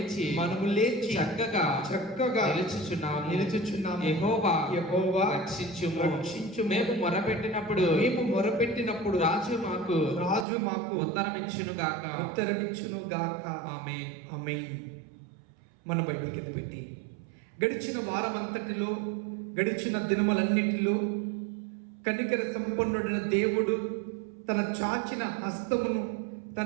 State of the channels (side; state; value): left; drops out; at 10.5 s